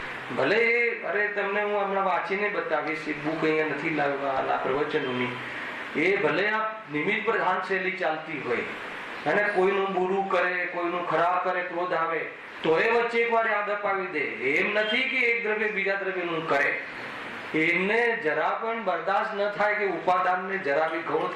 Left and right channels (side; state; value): both; identical; correlation 1.00